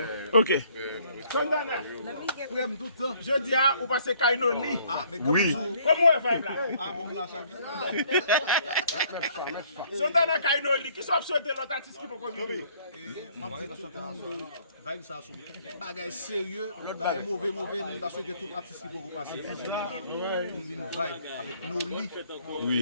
Ok. Je dis à vous passez Kainoli. Oui. Comment elle va là? Santana Kainoli, qui sont souhaité l'autre artiste qui peut venir. Vibe ça son bagage sérieux, l'autre bagage mauvais, nous avons souhaité tout artiste qui peut passer. Une vibe avec nos lits. Oui.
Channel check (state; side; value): inverted; both; correlation -0.61